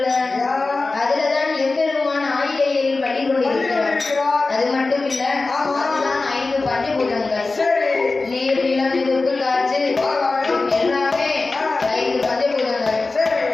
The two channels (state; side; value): quieter; right; 3.6 dB